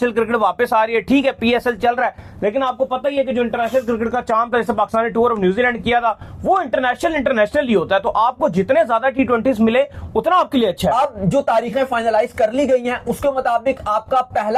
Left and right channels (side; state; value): both; identical; correlation 1.00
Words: क्रिकेट वापस आ रही है, ठीक है पीएसएल चल रहा है, लेकिन आपको पता ही है कि जो इंटरनेशनल क्रिकेट का चांद था, जैसे पाकिस्तान ने टूर ऑफ न्यूजीलैंड किया था, वो इंटरनेशनल ही होता है। तो आपको जितने ज्यादा T20 मिले उतना आपके लिए अच्छा है। अब जो तारीखें फाइनलाइज कर ली गई हैं उसके मुताबिक आपका